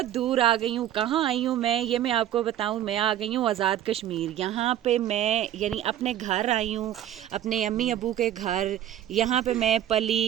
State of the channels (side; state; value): left; quieter; 11.7 dB